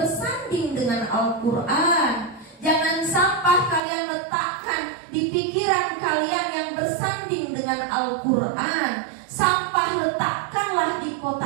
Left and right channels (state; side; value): drops out; left; at 3.8 s